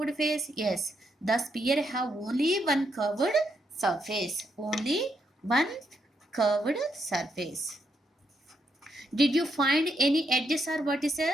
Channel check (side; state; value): both; normal; correlation 0.79